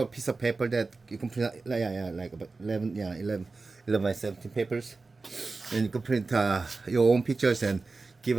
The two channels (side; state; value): left; quieter; 3.9 dB